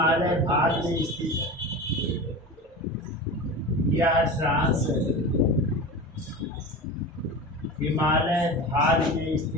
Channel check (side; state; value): both; normal; correlation 0.29